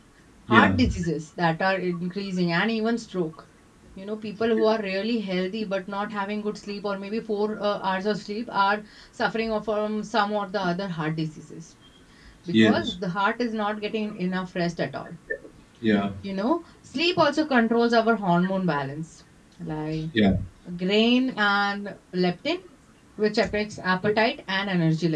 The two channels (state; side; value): identical; both; correlation 1.00